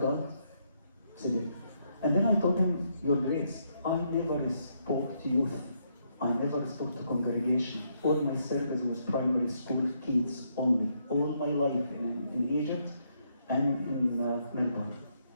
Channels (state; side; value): inverted; both; correlation -0.75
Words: I said it. And then I told him, your grace, I never spoke to youth. I never spoke to congregation. All my service was primary school kids only. All my life in Egypt and in Melbourne.